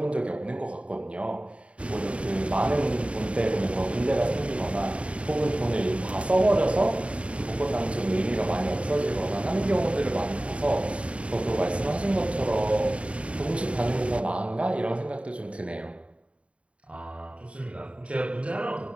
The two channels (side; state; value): left; late; 0.062 ms